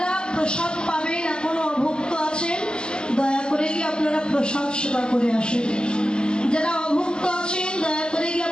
প্রসাদ পাবেন, এখনো অভুক্ত আছেন, দয়া করে গিয়ে আপনারা প্রসাদ সেবা করে আসেন। যারা অভুক্ত আছেন, দয়া করে গিয়ে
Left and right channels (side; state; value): right; late; 0.048 ms